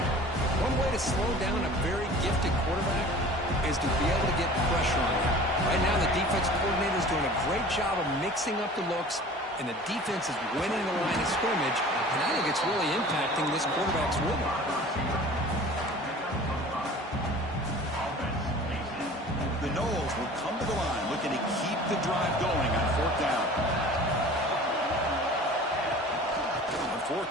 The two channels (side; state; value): both; normal; correlation 0.43